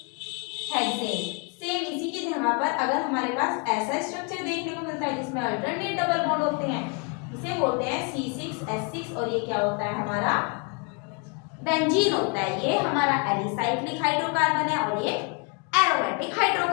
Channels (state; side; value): quieter; right; 34.0 dB